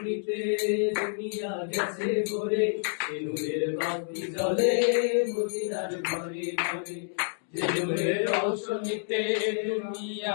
দুনিয়া গেছে ভরে, নূরের বাতি জ্বলে মদিনার ঘরে ঘরে। নূরের রৌশনীতে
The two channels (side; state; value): right; silent; digital silence